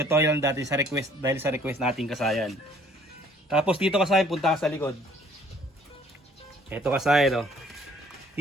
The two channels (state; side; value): normal; both; correlation 0.59